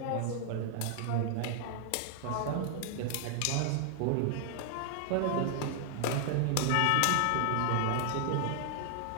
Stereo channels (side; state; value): both; different; correlation 0.00